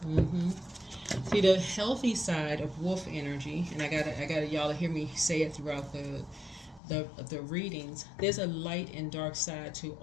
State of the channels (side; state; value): right; drops out; at 6.8 s